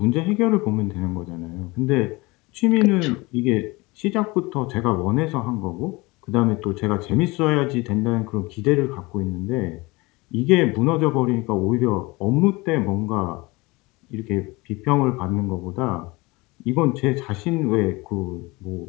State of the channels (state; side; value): quieter; right; 23.6 dB